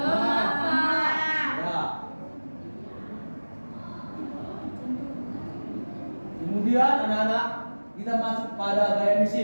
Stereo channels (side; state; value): both; inverted; correlation -1.00